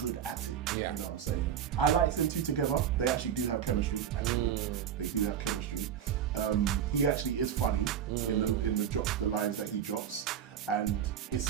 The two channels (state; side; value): quieter; left; 9.0 dB